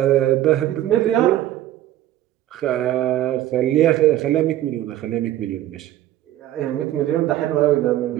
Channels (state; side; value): quieter; left; 13.4 dB